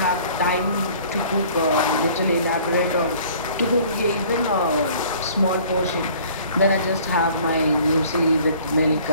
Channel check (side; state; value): both; inverted; correlation -0.52